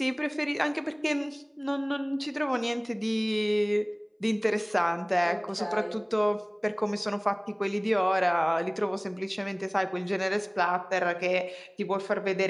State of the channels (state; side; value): identical; both; correlation 1.00